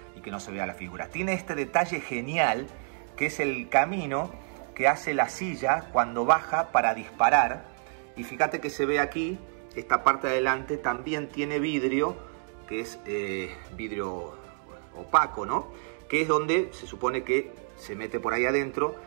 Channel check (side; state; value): left; silent; 59 dB below the other